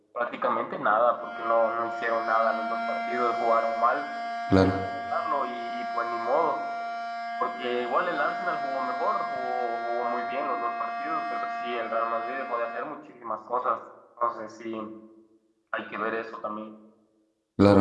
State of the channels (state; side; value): identical; both; correlation 1.00